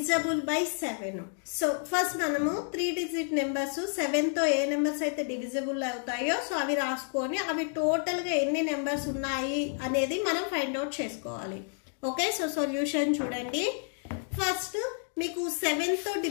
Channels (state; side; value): silent; right; 58 dB below the other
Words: by 7? So first మనము 3 digit నెంబర్స్ 7తో ఏ నెంబర్స్ అయితే డివిజబుల్ అవుతాయో సో అవి రాసుకొని అవి టోటల్ గా ఎన్ని నెంబర్స్ ఉన్నాయి అనేది మనం ఫైండ్ అవుట్ చేసుకోవాలి. ఓకే, సో సొల్యూషన్ చూడండి. ఫస్ట్ మీకు 7తో